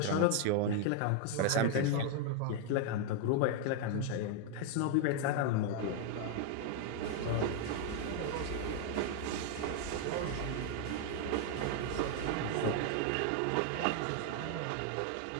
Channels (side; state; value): both; different; correlation 0.00